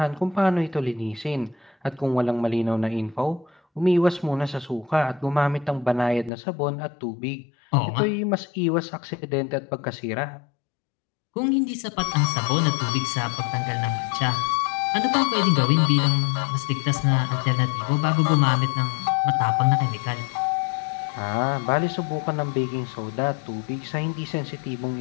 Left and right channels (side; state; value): right; drops out; at 6.3 s